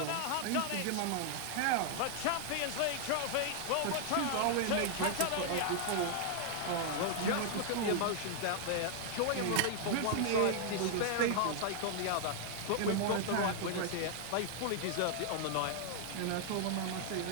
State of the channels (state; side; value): different; both; correlation 0.00